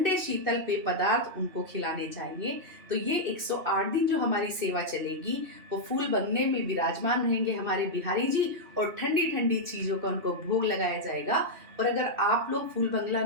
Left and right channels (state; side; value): late; left; 2.8 ms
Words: शीतल पेय पदार्थ उनको खिलाने चाहिए। तो ये 108 दिन जो हमारी सेवा चलेगी, वो फूल बंगले में विराजमान रहेंगे हमारे बिहारी जी, और ठंडी ठंडी चीज़ों का उनको भोग लगाया जाएगा। और अगर आप लोग फूल बंगला